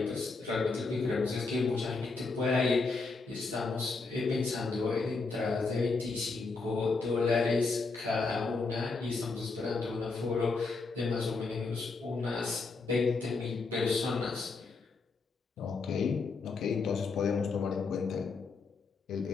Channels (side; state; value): right; quieter; 4.1 dB